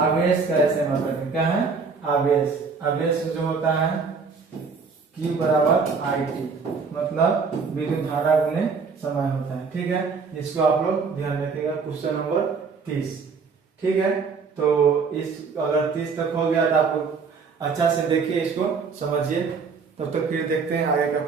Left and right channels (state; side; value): quieter; left; 5.1 dB